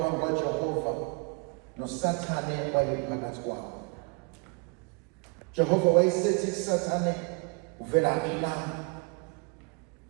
kaJehova. NoSathane wayephakathi kwabo. Jehova wayesethi kuSathane, uvelaphi na?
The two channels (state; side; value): quieter; left; 33.1 dB